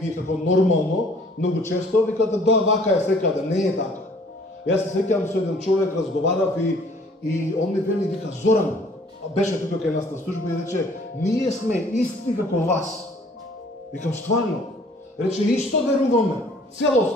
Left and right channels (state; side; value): normal; both; correlation 0.56